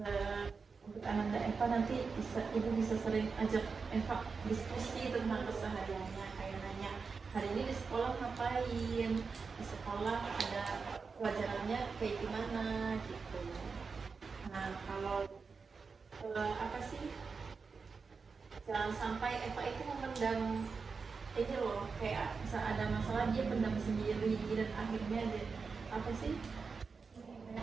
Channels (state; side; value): quieter; left; 4.9 dB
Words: untuk Ananda Eva nanti ibu bisa sering ajak Eva diskusi tentang kesehariannya, kayak nanya hari ini di sekolah ngapain, di sekolah ada pelajarannya kayak gimana gitu. Nah, kalau apa sih, jangan sampai Eva itu memendam ini loh, kayak bisa ada masalah dia pendam sendiri dan akhirnya dia apa sih,